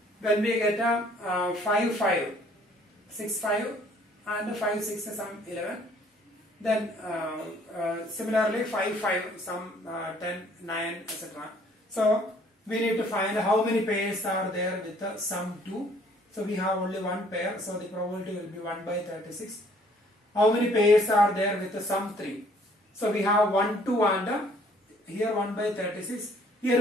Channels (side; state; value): both; normal; correlation 0.60